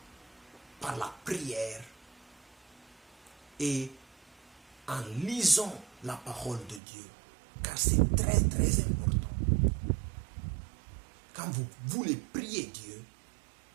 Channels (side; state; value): left; drops out; at 6.8 s